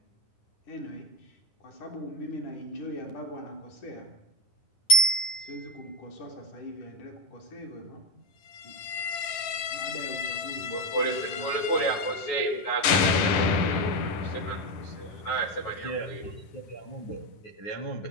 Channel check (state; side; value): late; right; 10 ms